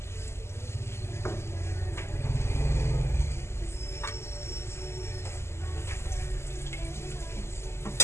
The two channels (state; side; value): late; right; 0.13 ms